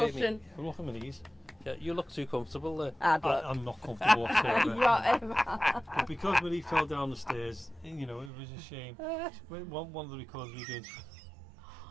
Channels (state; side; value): drops out; left; at 8.3 s